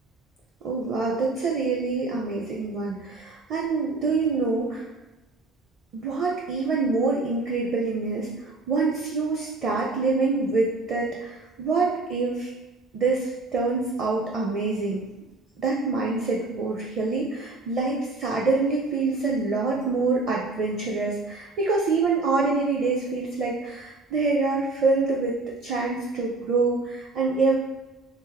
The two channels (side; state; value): left; quieter; 3.3 dB